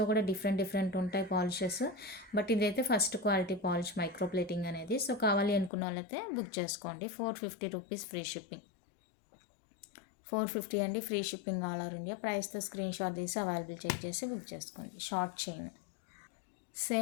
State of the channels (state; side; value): drops out; right; at 5.7 s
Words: కూడా డిఫరెంట్ డిఫరెంట్ ఉంటాయి పాలిషెస్, బట్ ఇదైతే first quality polish micro plating అనేది. సో కావాలి అనుకున్న వాళ్ళైతే బుక్ చేసుకోండి. 450 రూపీస్ ఫ్రీ షిప్పింగ్. 450 అండి, free shipping all over India. ప్రైస్తో స్క్రీన్ షాట్ తీసి అవైలబుల్ చెక్ చేసి బుక్ చేసుకోండి. షార్ట్ చైన్,